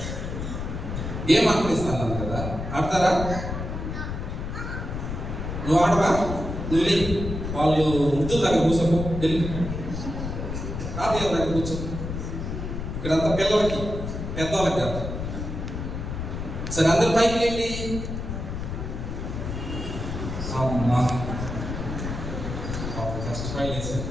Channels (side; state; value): left; noise; rumble, 5 dB below the sound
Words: గేమ్ ఆడిస్తాను కదా, ఆడతారా? నువ్వు ఆడవా? నువ్వు వాళ్ళు వృద్ధుల దగ్గర కూర్చోకు, వెళ్ళి తాతయ్య దగ్గర కూర్చో. ఇక్కడంతా పిల్లలకి, పెద్దవాళ్ళకి కాదు. సరే, అందరు పైకి వెళ్ళి. అమ్మా కష్టపడి వేసారు.